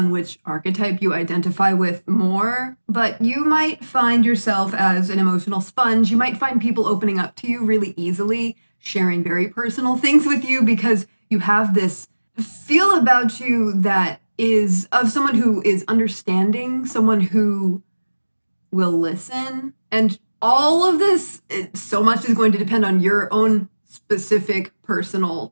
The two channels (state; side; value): inverted; both; correlation -1.00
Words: which archetype you identify with more, but you might find yourself as an emotional sponge. You might find people opening up to you really easily, sharing very personal things with you because you have this feel about you that is of someone who is understanding, someone who will listen. And all of this, so much is going to depend on your own specific